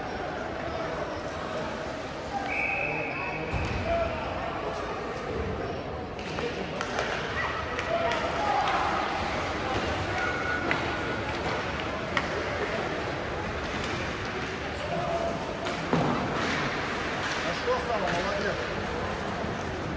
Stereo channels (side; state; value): both; identical; correlation 1.00